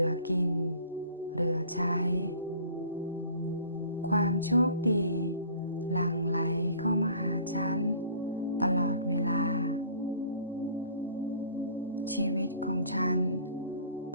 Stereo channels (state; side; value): inverted; both; correlation -0.50